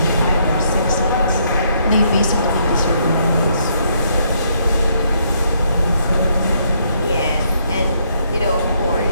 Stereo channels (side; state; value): both; inverted; correlation -0.72